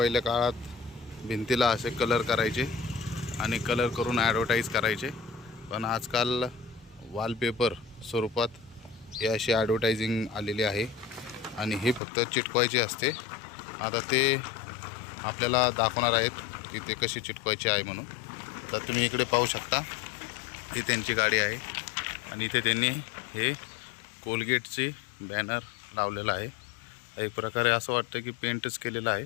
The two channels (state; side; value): drops out; right; at 12.0 s